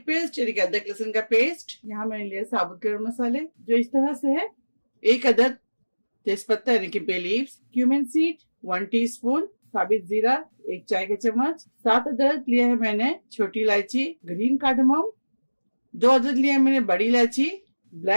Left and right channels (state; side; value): inverted; both; correlation -1.00